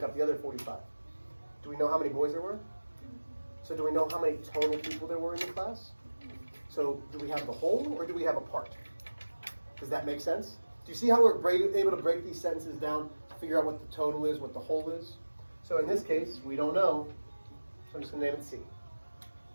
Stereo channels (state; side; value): inverted; both; correlation -1.00